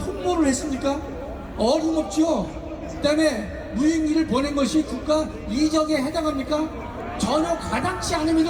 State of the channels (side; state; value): both; identical; correlation 1.00